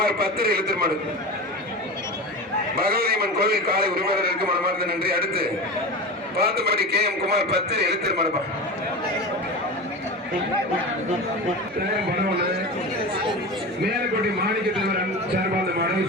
10 எழுத்தர் மாடு பகவதியம்மன் கோவில் காலை உரிமையாளருக்கு மனமார்ந்த நன்றி அடுத்து பார்த்தபடி கே குமார் 10 எழுத்தர் மாடுப்பா மேலக்கோட்டை மாணிக்க தலைவர் சார்பாந்த மாடு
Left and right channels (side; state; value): both; normal; correlation 0.27